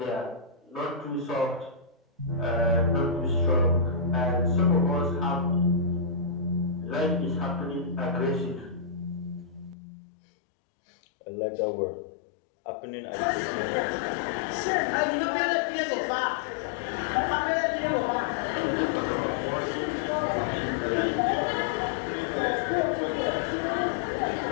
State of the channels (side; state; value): right; drops out; at 9.8 s